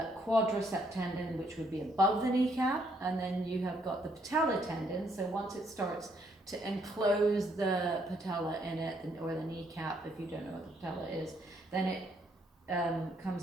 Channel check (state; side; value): normal; both; correlation 0.70